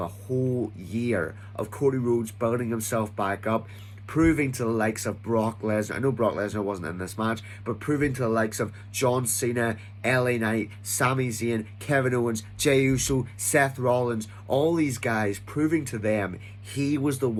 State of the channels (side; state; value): both; identical; correlation 1.00